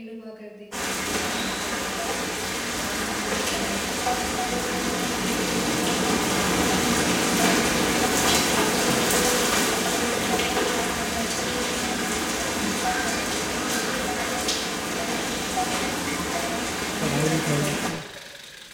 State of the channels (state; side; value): identical; both; correlation 1.00